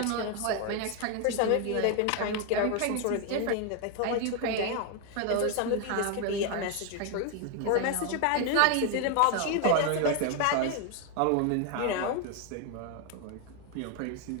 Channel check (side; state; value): both; different; correlation 0.01